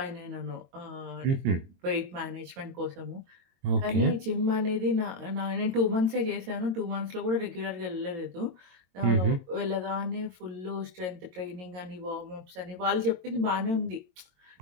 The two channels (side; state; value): left; late; 22 ms